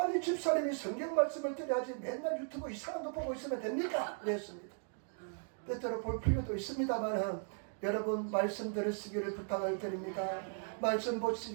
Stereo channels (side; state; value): left; silent; 53 dB below the other